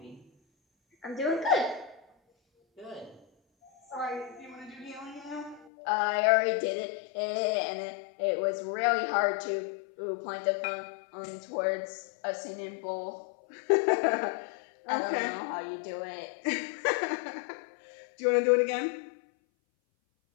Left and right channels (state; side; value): drops out; right; at 5.7 s